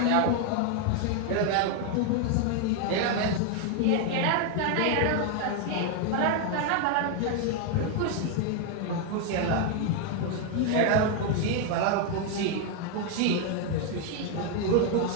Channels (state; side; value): different; both; correlation 0.01